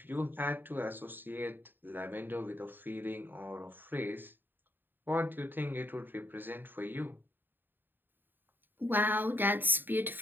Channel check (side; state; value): left; late; 0.094 ms